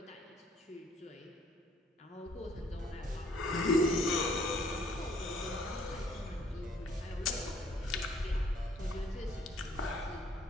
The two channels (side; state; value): both; normal; correlation 0.62